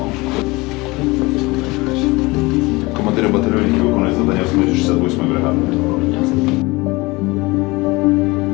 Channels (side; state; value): right; quieter; 23.0 dB